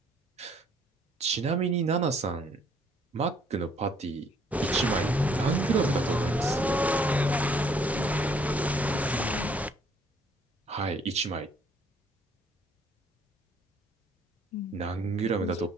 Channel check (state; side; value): normal; both; correlation 0.62